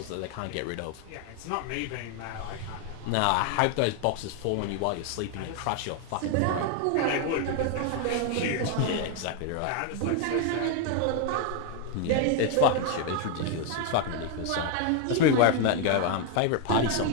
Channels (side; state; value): both; different; correlation 0.01